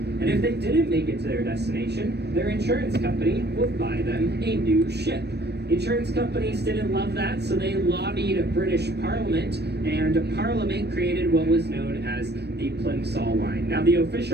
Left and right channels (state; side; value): late; left; 0.48 ms